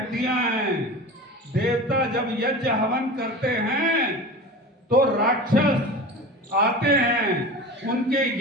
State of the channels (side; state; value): both; normal; correlation 0.33